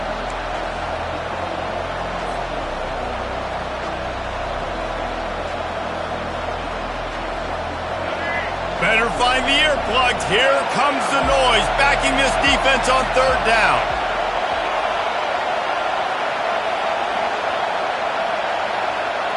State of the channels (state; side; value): identical; both; correlation 1.00